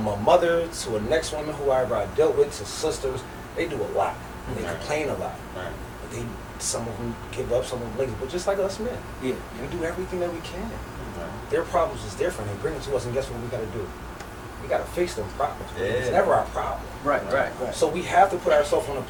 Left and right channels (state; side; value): identical; both; correlation 1.00